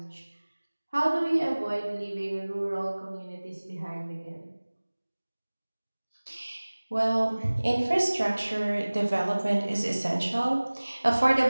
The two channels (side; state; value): both; inverted; correlation -1.00